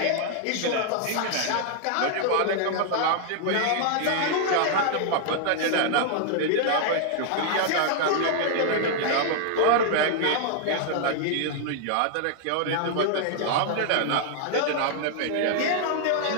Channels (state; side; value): different; both; correlation 0.00